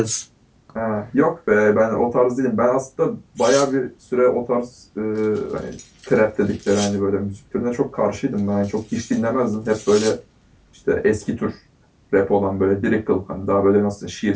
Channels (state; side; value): identical; both; correlation 1.00